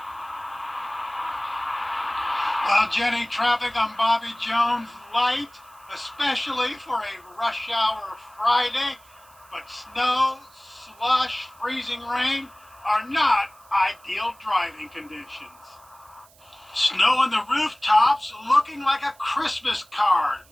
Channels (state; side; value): noise; right; hiss, 27 dB below the sound